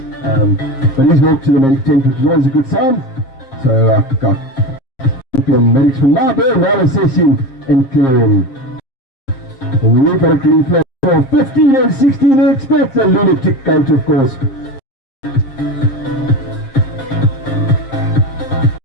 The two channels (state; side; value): late; right; 7.5 ms